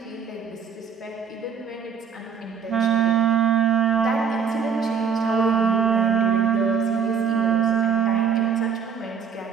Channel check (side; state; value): left; quieter; 6.8 dB